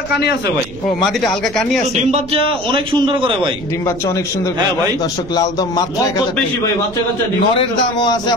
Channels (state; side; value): noise; right; rumble, 17 dB below the sound